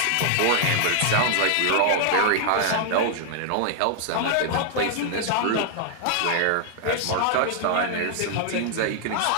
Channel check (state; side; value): different; both; correlation 0.00